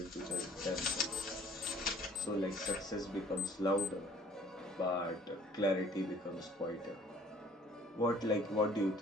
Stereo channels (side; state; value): both; normal; correlation 0.54